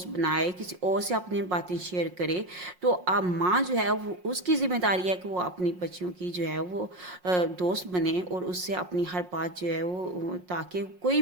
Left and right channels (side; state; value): left; late; 5.5 ms